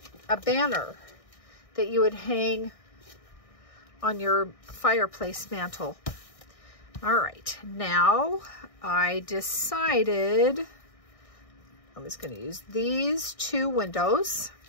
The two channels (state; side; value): late; right; 1.6 ms